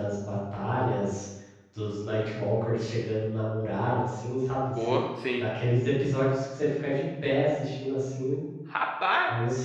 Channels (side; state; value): both; identical; correlation 1.00